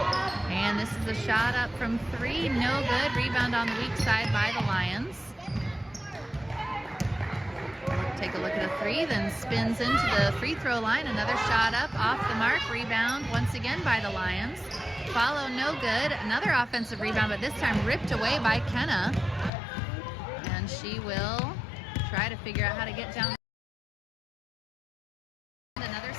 And this is a shot up from three, no good. Rebound on the weak side by the Lions. Take a look at a three, then spins into the free throw line. Another shot up, off the mark. Rebound once again by the Lions. Follow, no good. Another offensive rebound, but this time ripped away by Kenna. And she will try to figure out how to get down. Another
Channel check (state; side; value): drops out; right; at 19.5 s